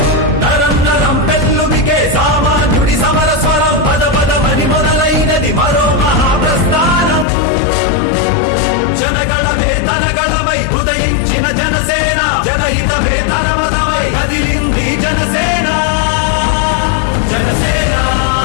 నరం నరం పెళ్ళుమికే సామాన్యుడి సమర స్వరం పద పదమని మొదలైనది మరో మహాప్రస్థానం. జనగణమే తనగణమై ఉదయించిన జనసేన, జనహితమే తన మతమై కదిలింది జనసేన. జనసేన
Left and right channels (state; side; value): drops out; right; at 7.2 s